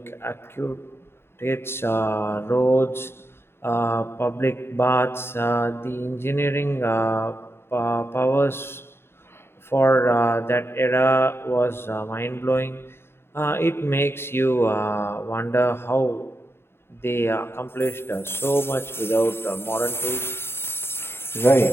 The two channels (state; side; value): late; right; 0.11 ms